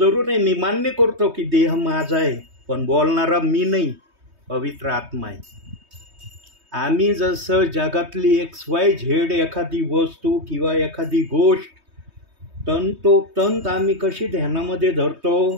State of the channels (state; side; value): late; left; 3.2 ms